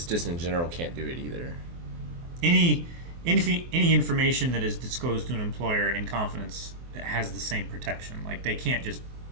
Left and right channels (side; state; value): left; late; 24 ms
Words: just in general, can't do it either. Any information that is disclosed to an employer in confidence has the same protection. Like they can't just